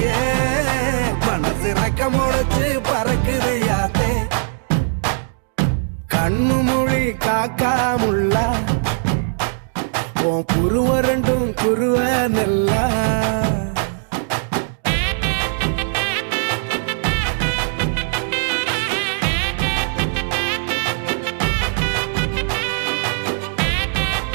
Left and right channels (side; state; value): left; silent; digital silence